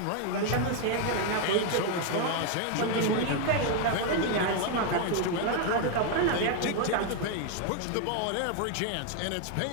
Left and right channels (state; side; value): different; both; correlation 0.00